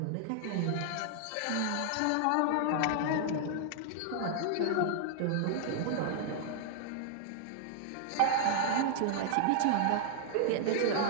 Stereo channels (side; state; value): both; different; correlation -0.01